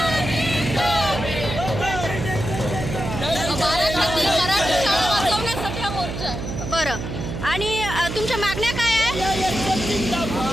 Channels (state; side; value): noise; right; hum, 6 dB below the sound